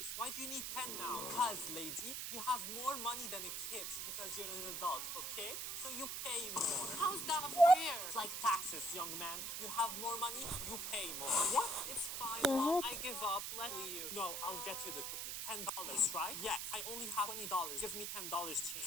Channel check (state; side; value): noise; right; hiss, 4 dB below the sound